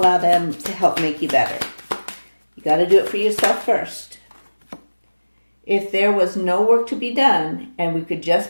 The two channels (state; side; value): inverted; both; correlation -1.00